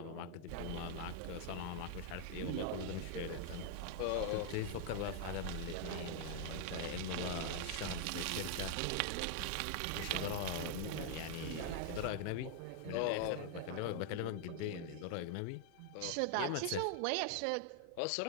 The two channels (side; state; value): both; different; correlation 0.00